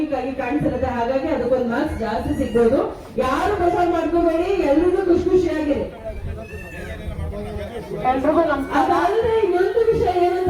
ಆಗಿ ಕಾಣಿಸಿರುತ್ತೆ. ಹಾಗಾಗಿ ಅದಕ್ಕೊಂದು ಮಾರ್ಕ್ಸ್ ಜಾಸ್ತಿ ಸಿಗ್ಬೋದು. ಯಾರು ಬೇಜಾರ್ ಮಾಡ್ಕೋಬೇಡಿ, ಎಲ್ರಿಗೂ ಖುಷಿಯಾಗಿರಿ. ಅದಾದ್ರೆ ಇನ್ನೊಂದು ವಿಷಯ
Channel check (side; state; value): both; identical; correlation 1.00